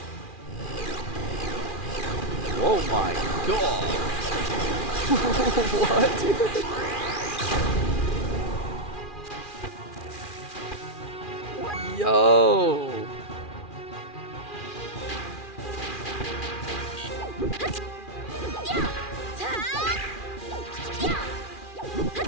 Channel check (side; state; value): right; late; 2.4 ms